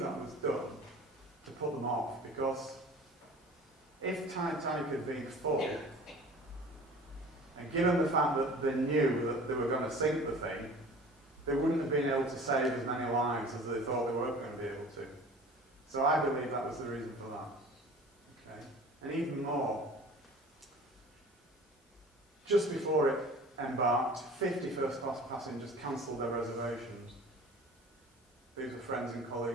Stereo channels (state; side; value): normal; both; correlation 0.43